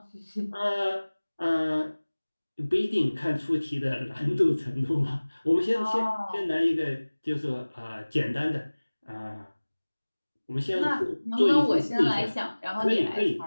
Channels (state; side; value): inverted; both; correlation -1.00